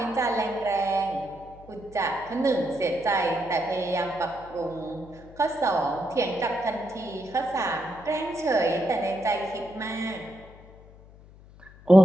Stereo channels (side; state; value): left; noise; hum, 21 dB below the sound